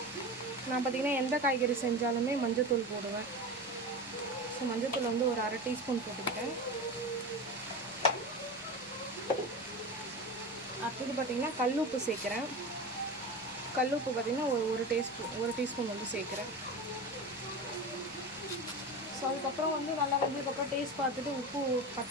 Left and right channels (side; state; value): both; normal; correlation 0.26